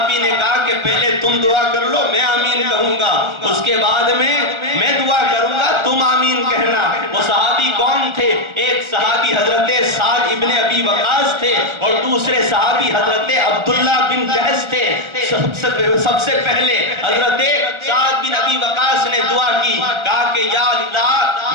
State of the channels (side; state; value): left; late; 1.4 ms